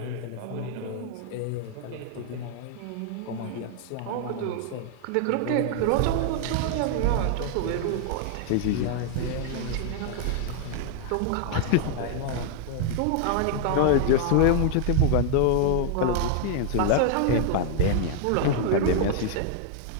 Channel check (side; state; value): both; different; correlation 0.00